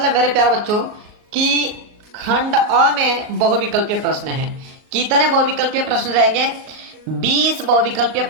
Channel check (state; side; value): late; left; 38 ms